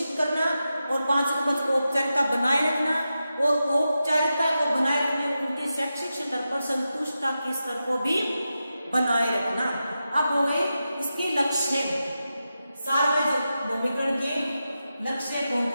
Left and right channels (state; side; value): inverted; both; correlation -0.90